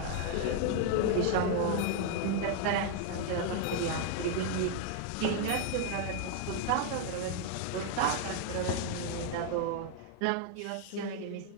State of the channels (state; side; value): different; both; correlation 0.00